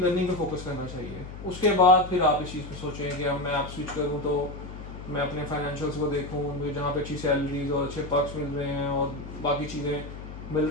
पे फोकस करना चाहिए। उसके बाद फिर आप इस चीज़ पे सोचें कि अब मैं आप स्विच करूँ तो मैं अपने फाइनेंशियल्स को देखूँ, मुझे जहाँ पे अच्छी सैलरीज और अच्छे पर्क्स मिल रहे हैं और बाकी चीज़ें मिल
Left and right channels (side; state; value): left; noise; hum, 12 dB below the sound